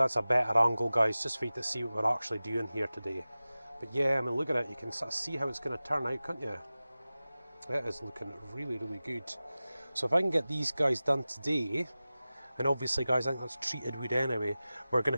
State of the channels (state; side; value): inverted; both; correlation -0.97